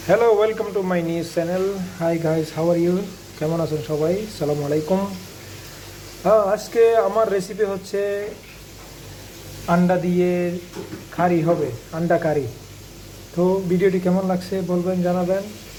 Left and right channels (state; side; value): identical; both; correlation 1.00